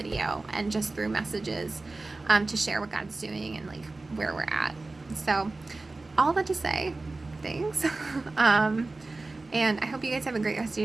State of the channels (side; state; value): left; quieter; 3.3 dB